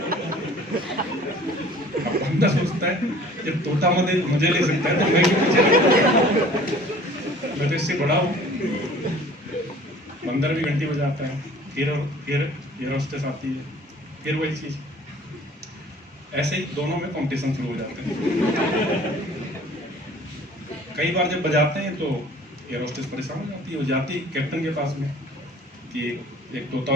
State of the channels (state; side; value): normal; both; correlation 0.49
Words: अब बंदा सोचता है जब तोता मजे ले सकता है तो मैं क्यों मजे ले, मैं तो इससे बड़ा हूँ। बंदर भी घंटी बजाता है, फिर एयर होस्टेस आती है, फिर वही चीज। ऐसे ही दोनों में कंपटीशन शुरू हो जाते हैं। कई बार जब बजाते हैं तो एयर होस्टेस परेशान हो जाती है। वो जाती है कैप्टन के पास में कि एक तोता